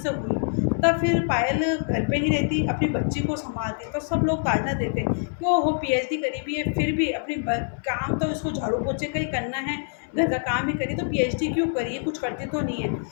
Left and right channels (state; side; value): silent; right; 58 dB below the other